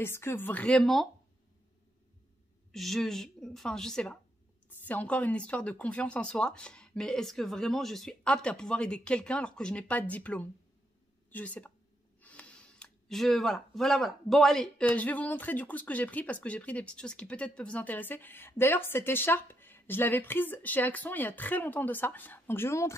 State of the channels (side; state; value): both; normal; correlation 0.79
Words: que vraiment, enfin je sais pas, c'est encore une histoire de confiance en soi, mais est-ce que vraiment je suis apte à pouvoir aider quelqu'un alors que je n'ai pas de diplôme? Je sais pas. Voilà. Bon allez, je vais vous montrer du coup ce que j'ai pris parce que j'ai pris des petites choses qui peut-être peuvent vous intéresser. D'ailleurs cette écharpe, je l'avais prise chez Action il y a très longtemps de ça. Donc je vais vous